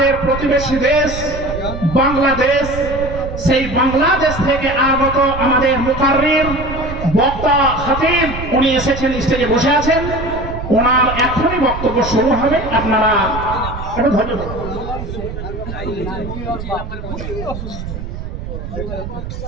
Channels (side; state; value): right; noise; rumble, 8 dB below the sound